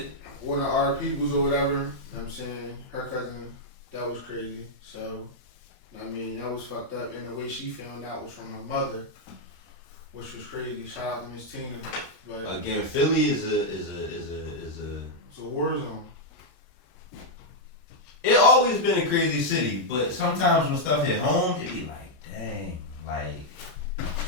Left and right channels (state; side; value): late; left; 1.3 ms